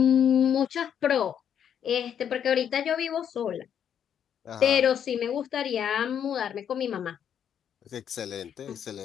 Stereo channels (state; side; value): quieter; right; 8.8 dB